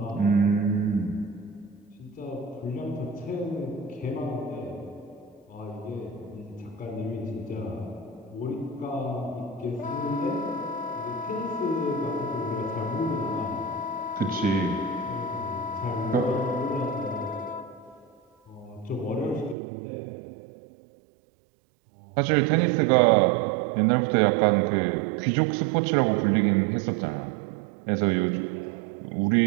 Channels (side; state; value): left; drops out; at 19.6 s